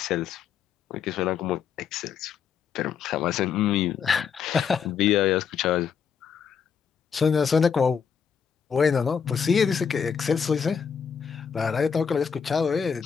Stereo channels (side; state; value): right; quieter; 6.9 dB